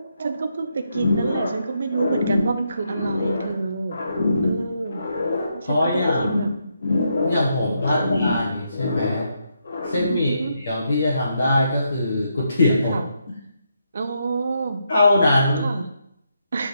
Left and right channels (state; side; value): inverted; both; correlation -0.79